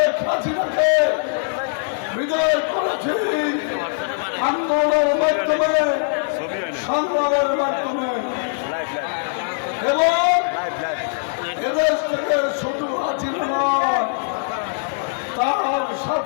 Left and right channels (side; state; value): right; silent; 57 dB below the other